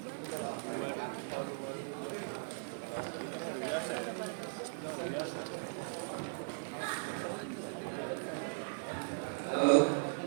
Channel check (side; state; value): left; silent; digital silence